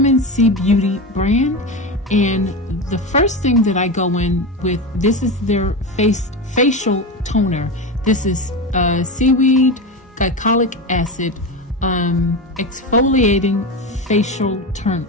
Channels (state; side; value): normal; both; correlation 0.20